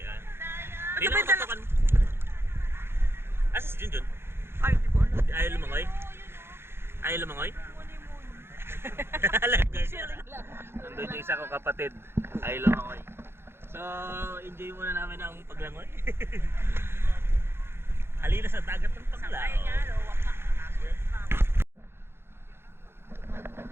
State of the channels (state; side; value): late; left; 0.11 ms